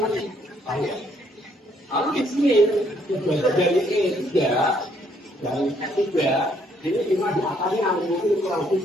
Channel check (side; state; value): both; normal; correlation 0.68